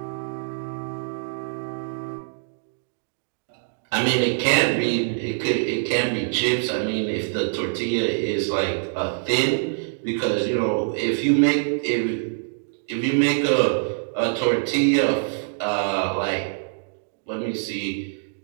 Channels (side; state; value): left; silent; digital silence